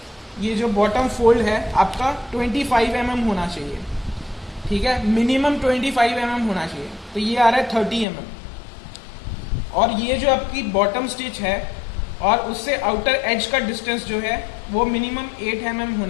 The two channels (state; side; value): drops out; right; at 8.1 s